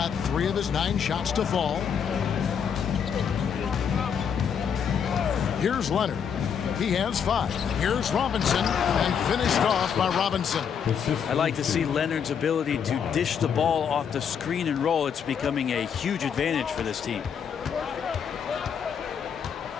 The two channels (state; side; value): quieter; right; 7.4 dB